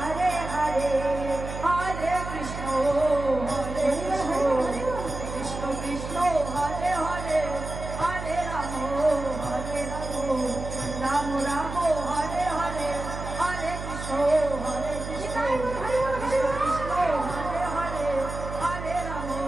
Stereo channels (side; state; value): right; noise; hum, 8 dB below the sound